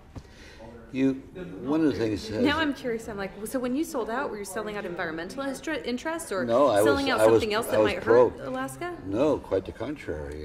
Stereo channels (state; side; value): identical; both; correlation 1.00